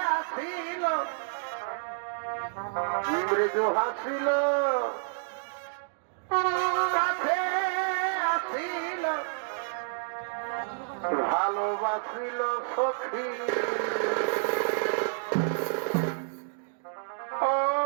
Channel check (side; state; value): left; silent; digital silence